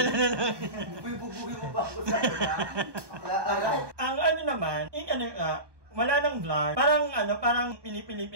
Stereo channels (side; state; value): left; late; 1.2 ms